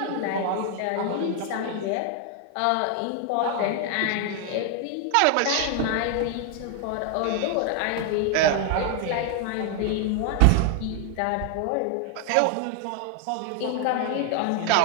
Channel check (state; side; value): different; both; correlation 0.00